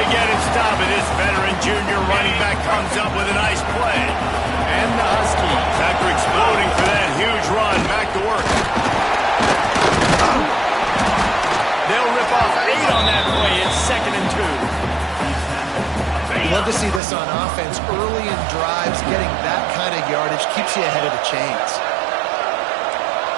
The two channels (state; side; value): drops out; left; at 17.0 s